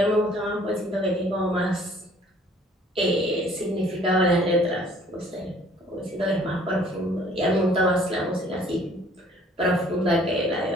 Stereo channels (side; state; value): both; normal; correlation 0.57